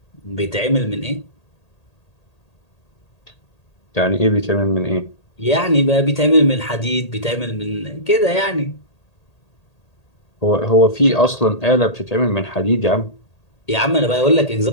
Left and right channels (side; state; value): right; late; 1.8 ms